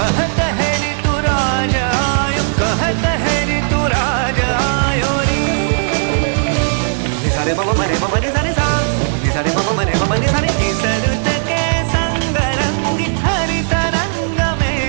है ऋतु राज आयो, कहत है ऋतु राज आयो री। निसारे मम मरे मम निसारे सा, निसारे मम मरे मम निसारे इसरुत के संग रंगी हरित रंग में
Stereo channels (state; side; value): silent; left; digital silence